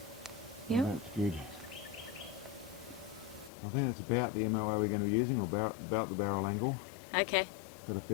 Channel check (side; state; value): right; drops out; at 3.5 s